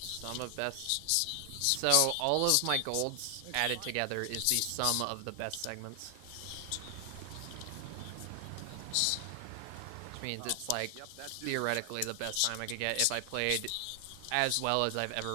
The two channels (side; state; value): both; different; correlation 0.00